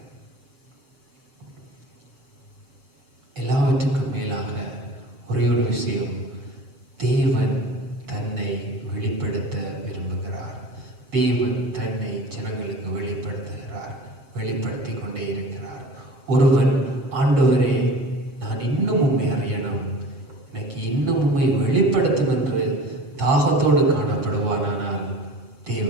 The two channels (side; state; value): left; late; 6.8 ms